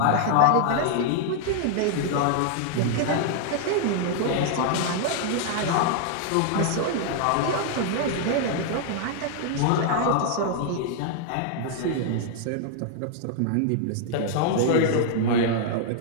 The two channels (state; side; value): different; both; correlation -0.01